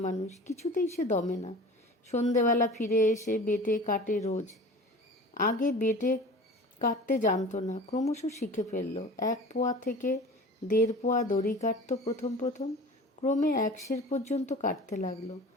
মানুষ, কিছুতেই সে দমে না। সন্ধেবেলা ফিরে এসে বেটে কাটে রোজ। আগে বেটে কাটতে জানতো না, ক্রমশ শিখে ফেলল। 1 পোয়া থেকে 1.5 পোয়া দড়ি কাটত প্রথম। ক্রমে 1 সের পর্যন্ত কাটতে লাগলো।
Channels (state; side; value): normal; both; correlation 0.39